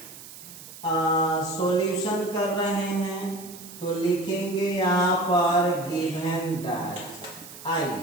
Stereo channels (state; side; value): noise; right; hiss, 16 dB below the sound